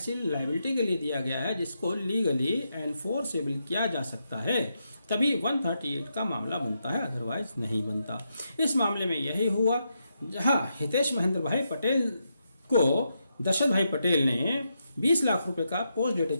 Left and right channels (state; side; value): inverted; both; correlation -0.83